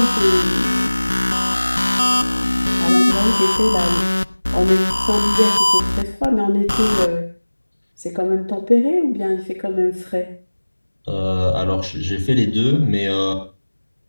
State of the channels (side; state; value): both; inverted; correlation -1.00